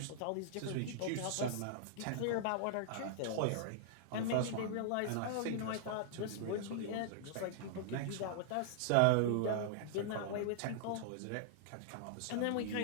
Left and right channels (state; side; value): different; both; correlation -0.01